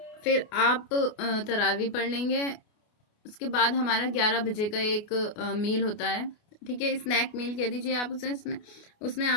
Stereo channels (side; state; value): right; late; 28 ms